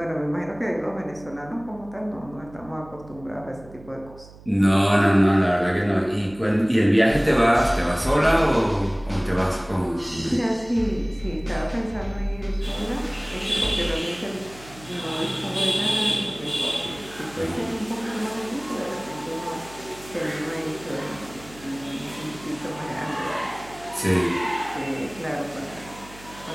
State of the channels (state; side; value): noise; right; hum, 20 dB below the sound